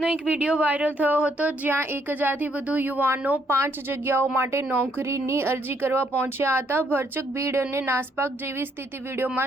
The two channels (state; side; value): normal; both; correlation 0.71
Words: એક વિડીયો વાયરલ થયો હતો જ્યાં 1000થી વધુ યુવાનો 5 જગ્યાઓ માટે નોકરીની અરજી કરવા પહોંચ્યા હતા. ભરચક ભીડ અને નાસભાગ જેવી સ્થિતિ